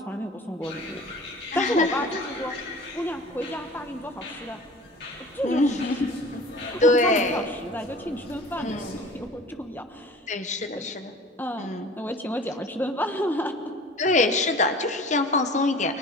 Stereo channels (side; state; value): both; normal; correlation 0.43